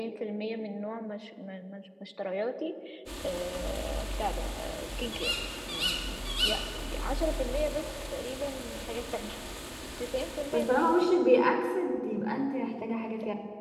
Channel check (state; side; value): identical; both; correlation 1.00